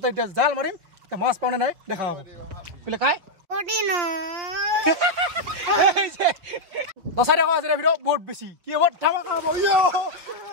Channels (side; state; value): left; late; 5.7 ms